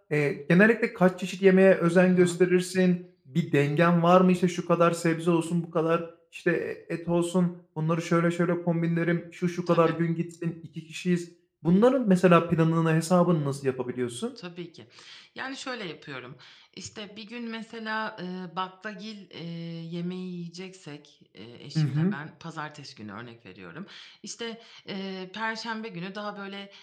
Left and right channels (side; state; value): both; identical; correlation 1.00